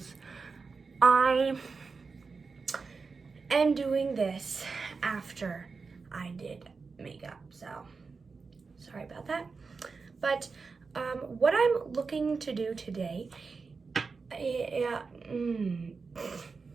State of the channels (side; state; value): left; quieter; 4.7 dB